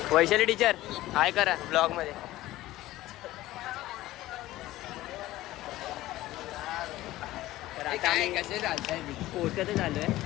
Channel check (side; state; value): right; quieter; 16.3 dB